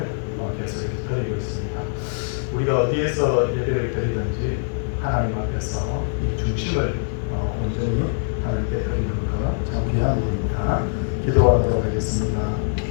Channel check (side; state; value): right; silent; digital silence